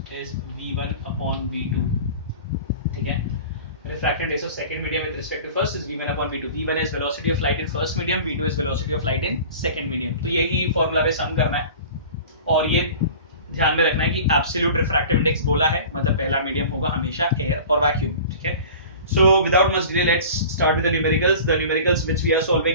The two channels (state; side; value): inverted; both; correlation -0.40